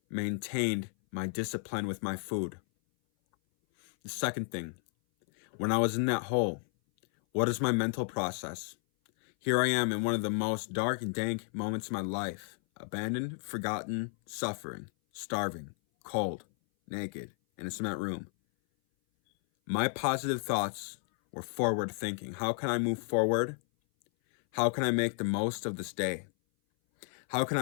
maintained my discipline with my food. The second thing, when I was in that hole, what is my mental process? Here I am in one of the most dark and dank moments of my life. Abandoned, forgotten, suffering, starving, cold, naked, in a cement room. My positive thoughts were forward thinking. How can I move forward? How can I make the most of this day? How can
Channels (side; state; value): right; silent; 56 dB below the other